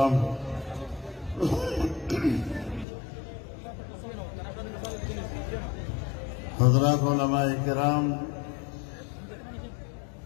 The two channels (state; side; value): drops out; right; at 2.9 s